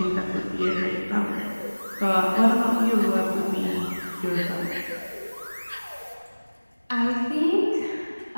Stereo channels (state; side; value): inverted; both; correlation -1.00